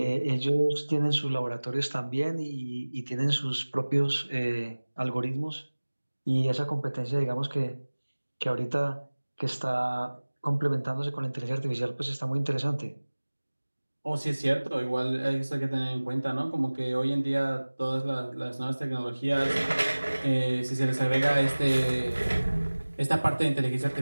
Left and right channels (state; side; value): inverted; both; correlation -1.00